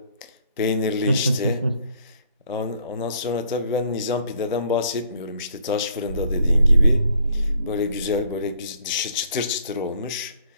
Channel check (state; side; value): inverted; both; correlation -0.62